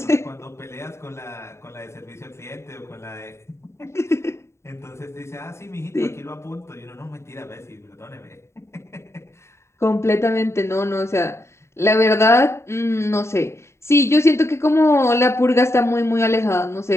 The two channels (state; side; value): late; right; 0.13 ms